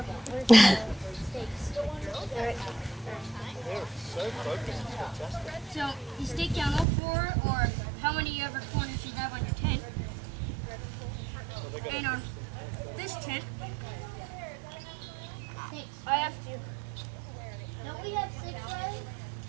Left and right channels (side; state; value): left; drops out; at 6.9 s